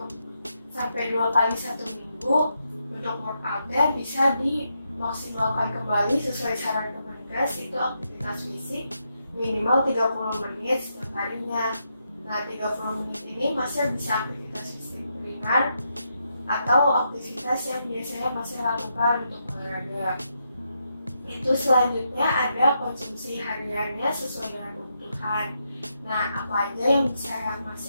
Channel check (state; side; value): inverted; both; correlation -0.82